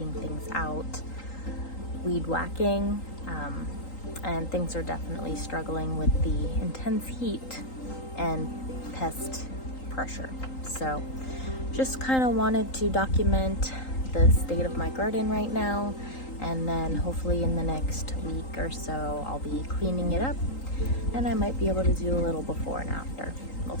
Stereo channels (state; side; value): late; right; 3.8 ms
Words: things out, weed whacking, and things are definitely struggling with the intense heat and pest pressure. So just kind of wanted to document the state of my garden right now, and then hopefully in the next week or so I'll be cleaning it up, and I might be able to do a little before and after. We'll